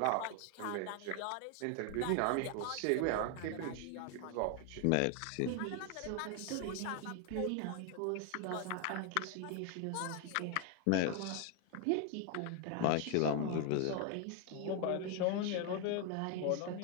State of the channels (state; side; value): different; both; correlation 0.01